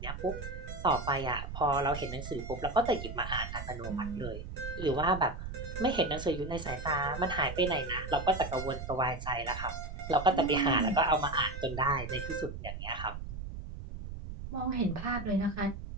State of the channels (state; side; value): noise; right; rumble, 8 dB below the sound